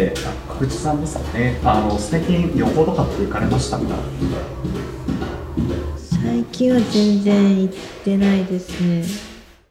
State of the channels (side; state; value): both; identical; correlation 1.00